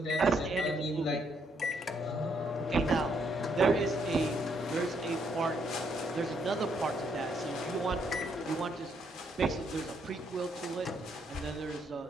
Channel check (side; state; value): both; normal; correlation 0.73